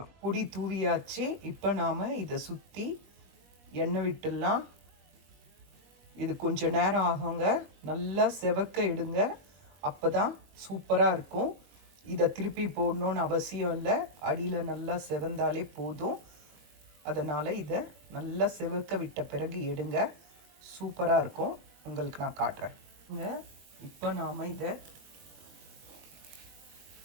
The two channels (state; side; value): late; left; 21 ms